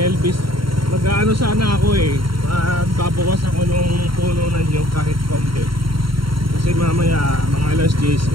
Mag-ano sana ako magbabawas ako nung puno ng nyog kahit konti. Kasi mamaya mga alas 10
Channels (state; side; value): late; left; 0.73 ms